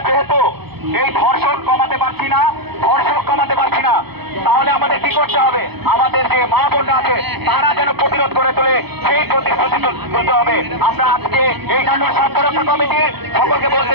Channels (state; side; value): late; left; 0.98 ms